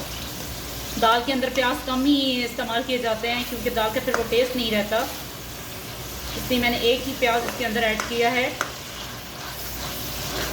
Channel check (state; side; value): identical; both; correlation 1.00